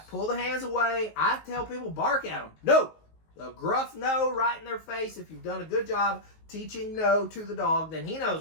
Pull the hands away. I tell people, bark at them. No. A gruff no right in their face. If you've done a good job teaching no to the dog, then he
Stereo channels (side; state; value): right; late; 19 ms